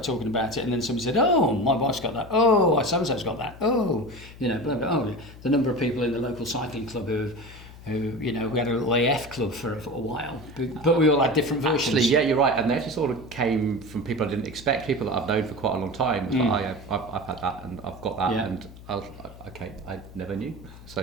talking about it, and then somebody said, oh, my wife's got that, oh, so-and-so's got that, oh, blah, blah, oh, the number of people in the local cycling club who we had a little AF club for a while, but we all had different versions. Actually, yeah, you're right, and they actually sort of came from people I didn't expect, people that I've known for quite a long time. It's like, I've had that, and I've got that, and I was like, okay, I never knew.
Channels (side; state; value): left; noise; hum, 18 dB below the sound